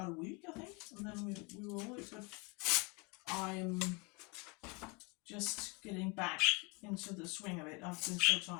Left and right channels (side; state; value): right; quieter; 29.9 dB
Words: a week, I think, and then we were all good. I'm just getting back into the swing of it. I've been so